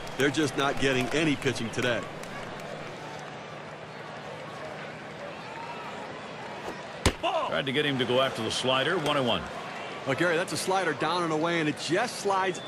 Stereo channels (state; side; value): identical; both; correlation 1.00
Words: they're just not getting any pitching today. Tried to get him to go after the slider, 1-1. Well, Gary, that's a slider down and away, and it just slides